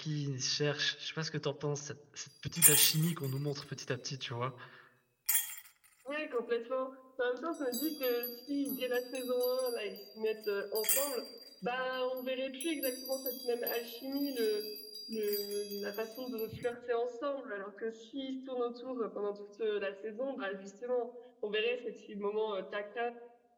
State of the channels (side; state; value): both; identical; correlation 1.00